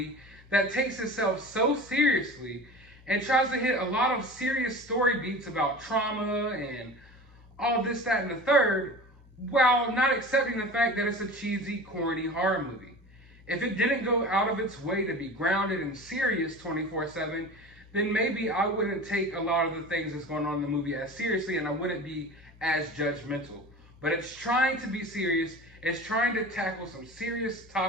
that takes itself so seriously and tries to hit a lot of serious story beats about trauma and all this, that, and the third, while not accepting the fact that it's a cheesy, corny horror movie. If it didn't go out of its way to be grounded and serious 24/7, then maybe I wouldn't take a lot of the things that's going on in the movie as seriously, and I wouldn't be as judgmental. But it's trying to be serious. It's trying to tackle some serious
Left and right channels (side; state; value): both; normal; correlation 0.36